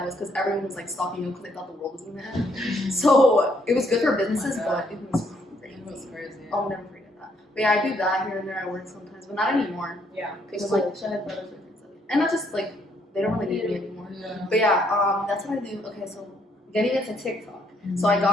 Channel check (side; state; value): both; normal; correlation 0.70